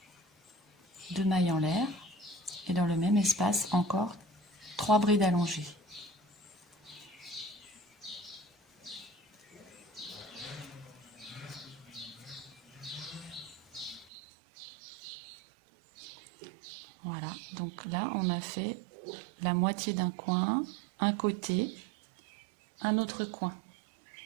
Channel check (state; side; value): drops out; left; at 14.1 s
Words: 2 mailles en l'air, et dans le même espace encore 3 brides allongées. Voilà, donc là on a fait la moitié d'un coin, un côté, un autre coin.